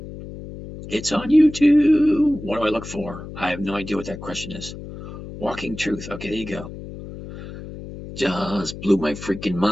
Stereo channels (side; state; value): left; noise; hum, 12 dB below the sound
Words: It's on YouTube. What do I look for? I have no idea what that question is. Walking Truth. Okay, there you go. Just blew my freaking